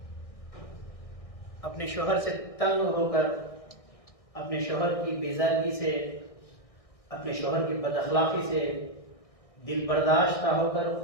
अपने शोहर से तंग होकर, अपने शोहर की बेजारगी से, अपने शोहर की बदअखलाकी से दिल बर्दाश्त ना होकर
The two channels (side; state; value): right; late; 1.6 ms